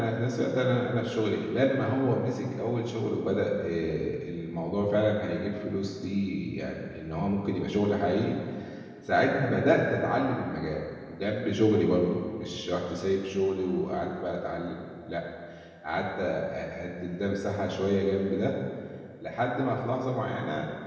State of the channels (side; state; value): both; identical; correlation 1.00